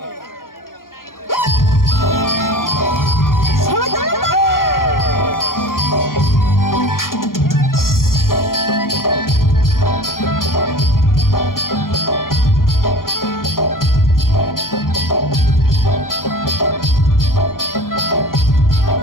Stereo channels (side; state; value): right; late; 0.91 ms